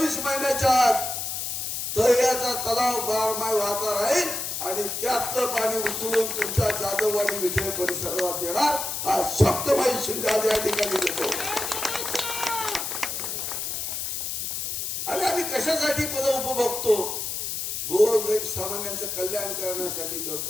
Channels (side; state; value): left; noise; hiss, 3 dB below the sound